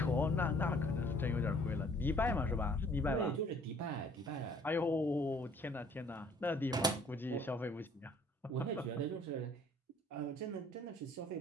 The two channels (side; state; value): both; normal; correlation 0.57